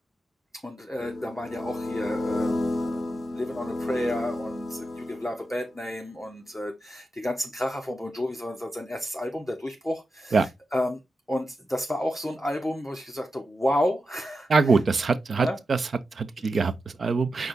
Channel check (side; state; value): both; normal; correlation 0.90